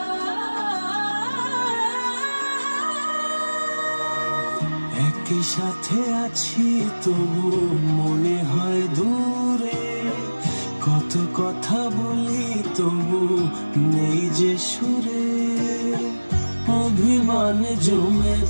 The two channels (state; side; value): inverted; both; correlation -1.00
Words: সাথে আছি তবু মনে হয় দূরে, কত কথা বলি তবু নেই যে সুরে, অভিমান জমে